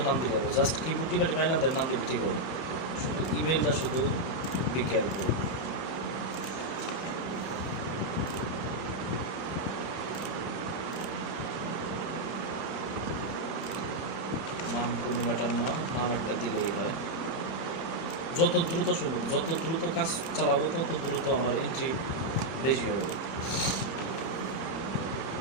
নাম দিলে হবে, জাস্ট কিবোর্ড টিপে টিপে আইল্যান্ডের নাম দিলে ঠিক হবে। শুধু ইমেলটা শুধু বি কেয়ারফুল। নাম কোনো ম্যাটার না, নাম একটা দিলেই হয়। যত দ্রুত সম্ভব, যত দ্রুত কাজ চালাবো তত দ্রুত আমার এন্ট্রি বেশি হবে।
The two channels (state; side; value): late; right; 30 ms